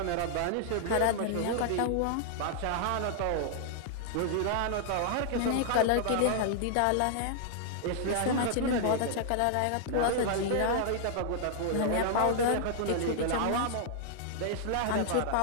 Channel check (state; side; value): different; both; correlation -0.01